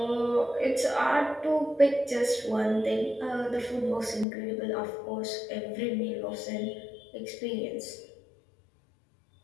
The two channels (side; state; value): right; drops out; at 4.2 s